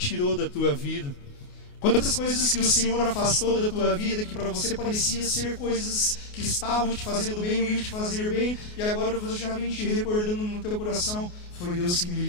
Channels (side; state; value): right; late; 28 ms